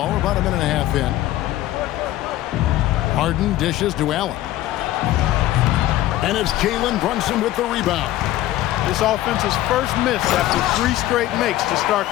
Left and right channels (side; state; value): right; quieter; 14.8 dB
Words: we're about a minute and a half in. Harden dishes to Allen. And it's Jalen Brunson with the rebound. This offense's first miss after 3 straight makes to start